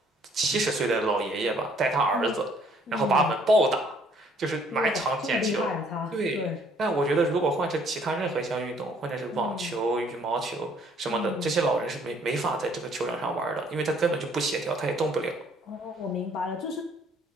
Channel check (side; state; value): both; normal; correlation 0.62